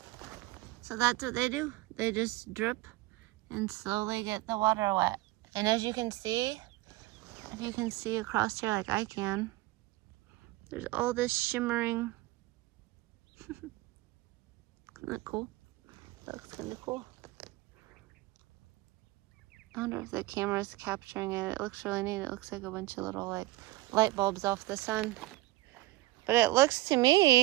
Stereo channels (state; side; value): quieter; left; 19.1 dB